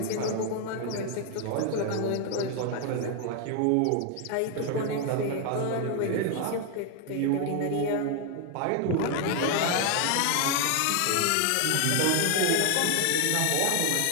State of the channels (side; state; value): both; different; correlation 0.01